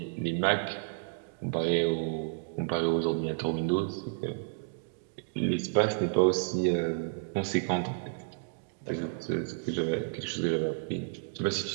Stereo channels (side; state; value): left; silent; digital silence